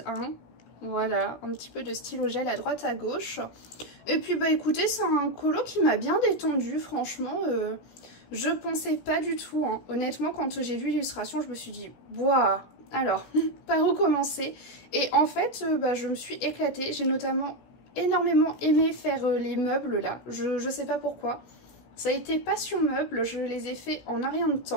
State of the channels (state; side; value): late; right; 17 ms